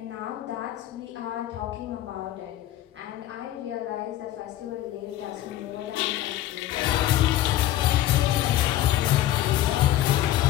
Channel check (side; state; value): right; quieter; 13.7 dB